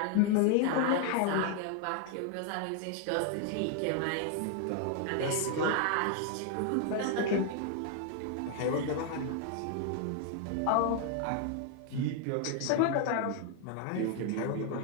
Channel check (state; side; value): different; both; correlation 0.00